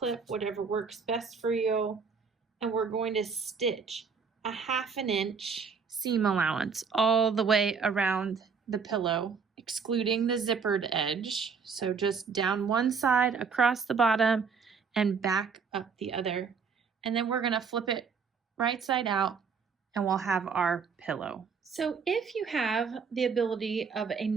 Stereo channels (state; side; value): quieter; left; 5.6 dB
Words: whatever works best for you. And we're going to stitch a 1/2 inch seam allowance all the way around the pillow, excluding the zippered edge. So just down one side, across the bottom, and back up the other. And then we're going to flip it right side out and we'll have our pillow. So if you have the ability of a